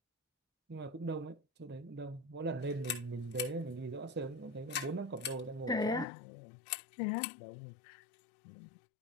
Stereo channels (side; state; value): right; drops out; at 6.1 s